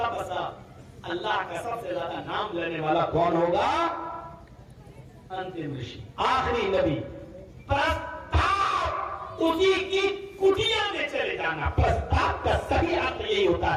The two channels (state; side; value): identical; both; correlation 1.00